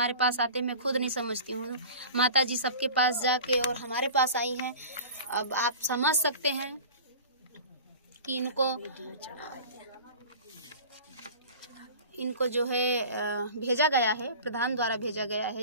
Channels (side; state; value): both; inverted; correlation -0.38